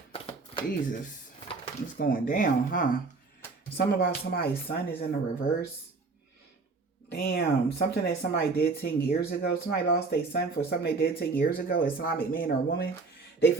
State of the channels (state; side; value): quieter; left; 4.1 dB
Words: Jesus. It's going down, huh? Something about somebody's son is in the reverse. Damn. Something that somebody did 10 years ago. Somebody lost their son for something they did 10 years ago. Islamic man or woman. They